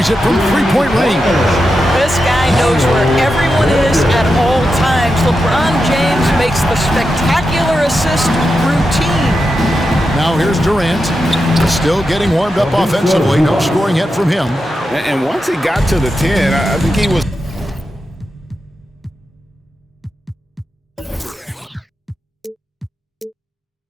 it from three-point range. This guy knows where everyone is at all times. LeBron James makes the spectacular assist routine. Now here's Durant. Still getting warmed up offensively. No scoring yet from him. And once he got to the 10, I think he was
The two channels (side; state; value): both; normal; correlation 0.88